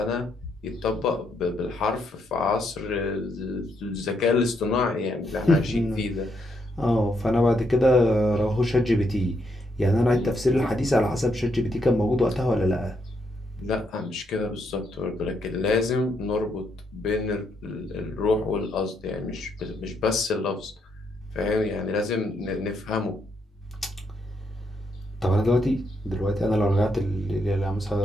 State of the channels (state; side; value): normal; both; correlation 0.77